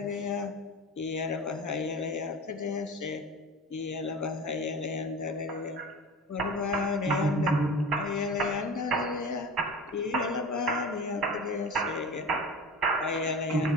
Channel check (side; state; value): both; normal; correlation 0.33